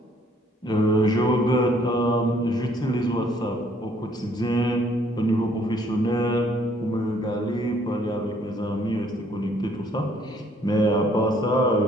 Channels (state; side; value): normal; both; correlation 0.63